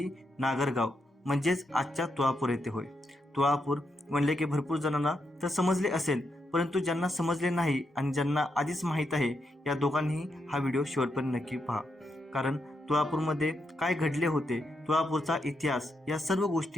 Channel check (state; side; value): normal; both; correlation 0.82